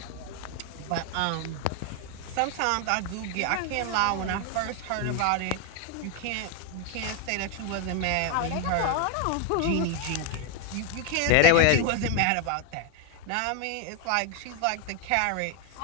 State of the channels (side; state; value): both; different; correlation 0.01